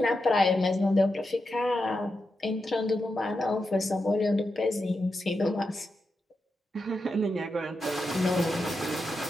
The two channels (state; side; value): normal; both; correlation 0.87